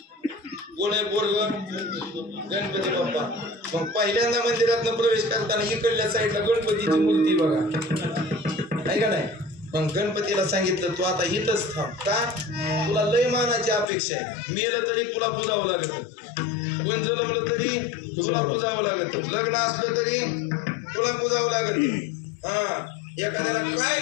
कोण आहे पोरग? गणपती बाप्पा. मग पहिल्यांदा मंदिरात प्रवेश करताना इकडल्या साईडला गणपतीची मूर्ती बघा, आहे का नाही? मग गणपतीला सांगितलं तू आता इथंच थांब. का? तुला लय मानाची अपेक्षा आहे. मेलं तरी तुला पुजावं लागत, कोण जन्मलं तरी तुला पुजावं लागत, लग्न असलं तरी तुला पुजावं लागत. एखाद्याला काय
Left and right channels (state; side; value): drops out; right; at 13.9 s